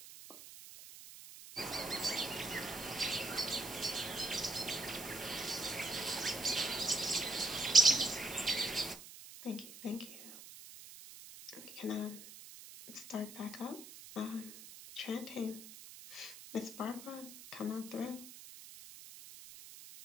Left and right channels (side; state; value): right; noise; hiss, 15 dB below the sound